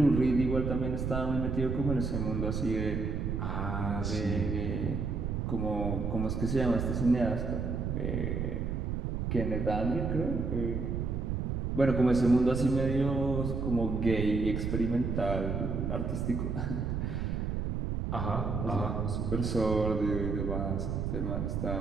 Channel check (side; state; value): right; noise; rumble, 1 dB below the sound